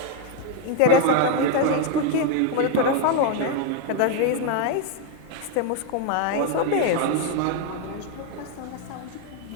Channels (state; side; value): different; both; correlation 0.01